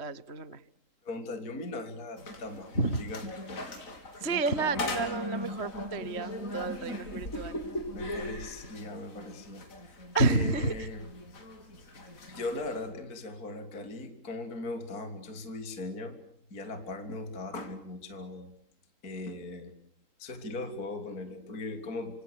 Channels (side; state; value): right; late; 4.0 ms